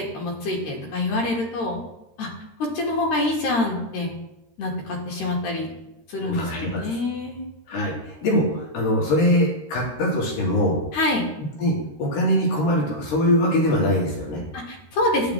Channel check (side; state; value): right; late; 13 ms